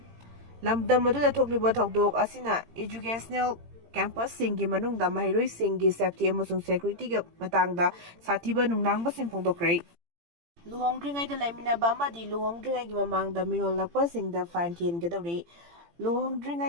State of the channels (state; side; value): late; left; 18 ms